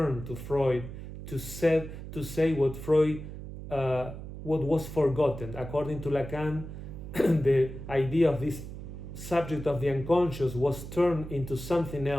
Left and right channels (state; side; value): noise; right; hum, 10 dB below the sound